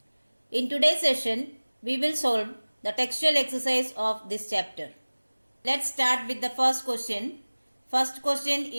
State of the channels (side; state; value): both; inverted; correlation -1.00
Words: In today's session, we will solve the textual exercise of this chapter. Let's start with the first question. First question